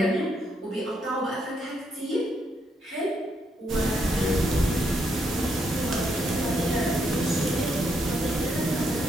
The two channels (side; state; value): both; normal; correlation 0.77